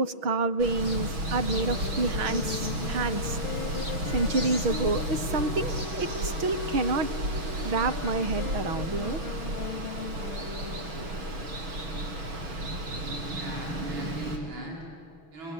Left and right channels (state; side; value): late; left; 6.2 ms